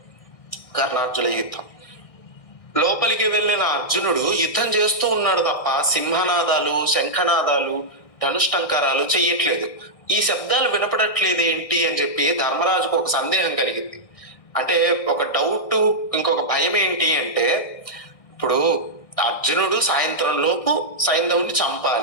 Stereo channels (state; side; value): late; right; 1.6 ms